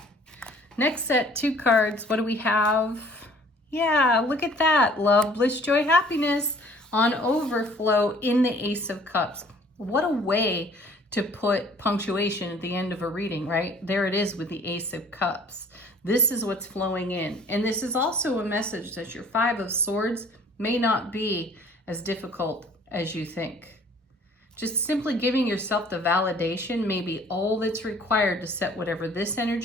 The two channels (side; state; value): both; normal; correlation 0.54